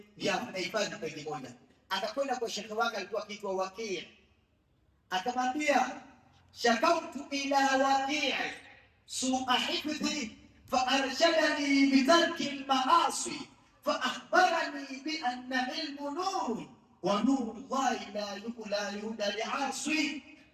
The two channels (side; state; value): both; identical; correlation 1.00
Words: ya anahifadhi peji moja. Akakwenda kwa shekhi wake, alikuwa akiitwa Waqi', akamwambia shakautu ila Waqi' su'a hifdhi فأرشدني بترك المعاصي فأخبرني بأن علم نور ونور الله لا يهدى لعاصي.